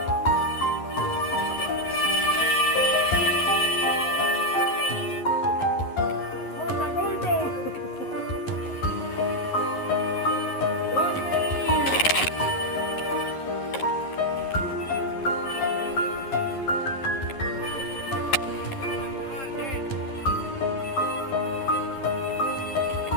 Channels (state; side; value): late; right; 11 ms